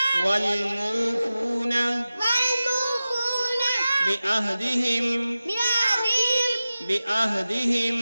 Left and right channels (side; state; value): both; inverted; correlation -0.95